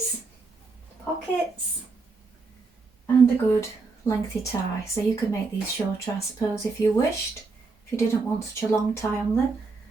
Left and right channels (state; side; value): quieter; left; 4.1 dB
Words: pockets, and a good lengthy tie. So you could make these shorter, I suppose, if you wished, if you didn't want such a long tie on them.